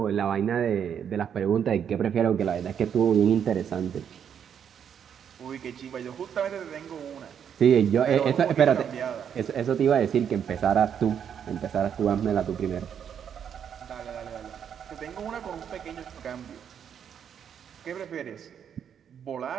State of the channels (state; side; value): quieter; left; 8.3 dB